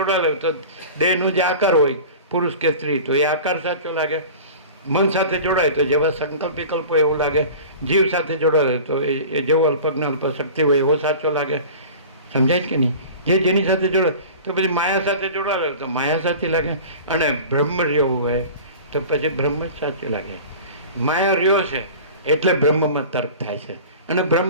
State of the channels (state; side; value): inverted; both; correlation -0.38